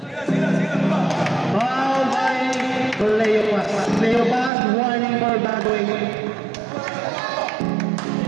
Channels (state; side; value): drops out; left; at 4.5 s